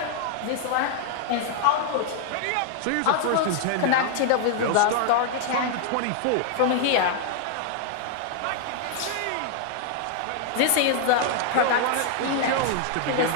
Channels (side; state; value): both; different; correlation 0.00